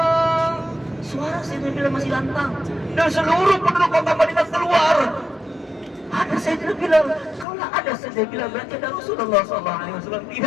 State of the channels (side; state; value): right; drops out; at 7.5 s